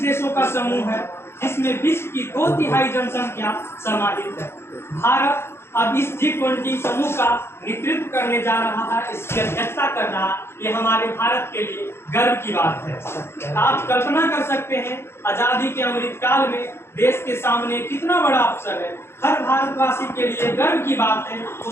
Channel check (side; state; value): right; late; 0.12 ms